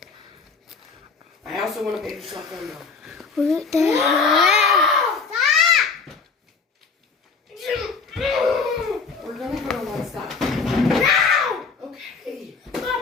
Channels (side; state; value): right; quieter; 4.8 dB